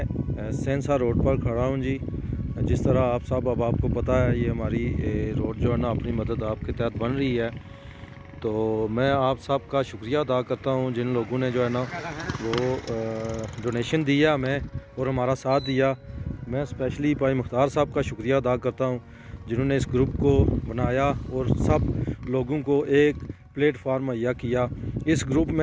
सेंसा रोड पर खड़ा हूँ जी। जिस तरह आप सब अहबाब को पता है, ये हमारी रोड जो है ना अपनी मदद आपके तहत बन रही है। तो मैं आप सब का शुक्रिया अदा करता हूँ जिन लोगों ने जो है ना वो डोनेशन दिया हमें और हमारा साथ दिया। मैं स्पेशली भाई मुख्तार साहब का शुक्रिया अदा करता हूँ जिन्होंने इस ग्रुप को बनाया और सब लोगों को एक प्लेटफार्म मुहैया किया। इस ग्रुप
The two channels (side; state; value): both; identical; correlation 1.00